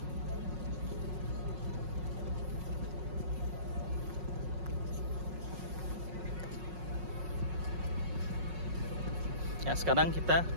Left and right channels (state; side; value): late; left; 5.5 ms